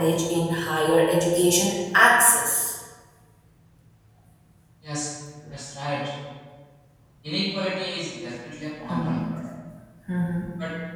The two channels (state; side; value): identical; both; correlation 1.00